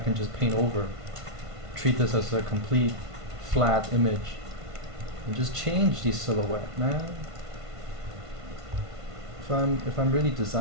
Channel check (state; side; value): late; left; 1.5 ms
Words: just paint over. Treat this as a complete flat image. And just change the silhouette, man. If I'm really